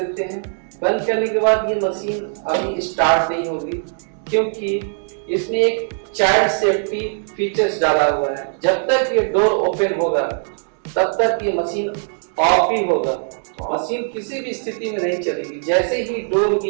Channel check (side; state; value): left; silent; digital silence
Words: हैं। बंद करने के बाद ये मशीन अभी स्टार्ट नहीं होगी क्योंकि इसमें एक चाइल्ड सेफ्टी फीचर्स डाला हुआ है। जब तक ये डोर ओपन होगा तब तक ये मशीन ऑफ ही होगा। मशीन किसी भी स्थिति में नहीं चलेगी। जैसे ही डोर